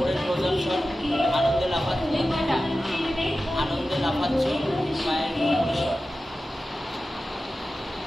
প্রদর্শন, আনন্দে লাফাচ্ছে, আনন্দে লাফাচ্ছে পায়ের উপরের শট।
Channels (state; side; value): normal; both; correlation 0.94